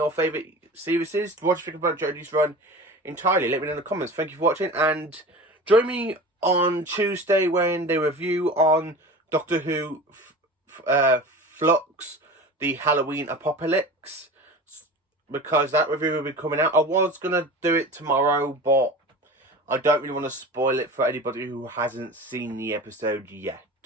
favourite series? What do you think about Jodie's run entirely? Let me know in the comments. Thank you for watching, and join me on Tuesday when they review on Doctor Who Flux, the Halloween Apocalypse, because that review will be coming out. I was going to do it tomorrow, but I don't really want to spoil it for anybody who hasn't seen the episode yet.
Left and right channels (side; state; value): both; normal; correlation 0.35